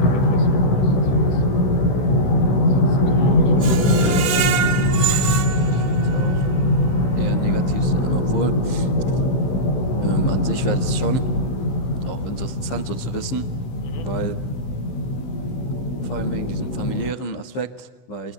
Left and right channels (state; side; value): late; right; 15 ms